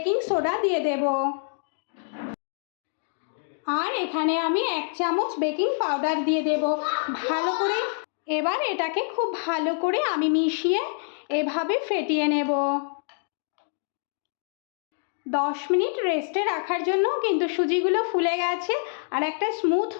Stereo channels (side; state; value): right; silent; digital silence